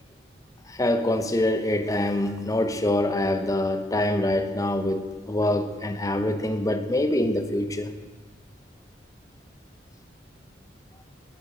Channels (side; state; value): both; normal; correlation 0.72